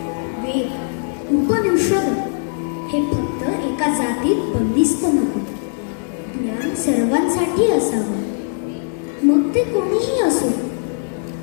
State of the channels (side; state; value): right; silent; digital silence